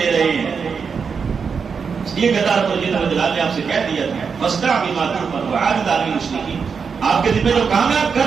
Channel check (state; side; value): quieter; left; 5.8 dB